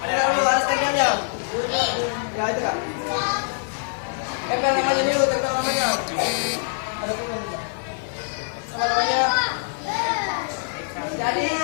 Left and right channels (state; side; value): silent; right; 59 dB below the other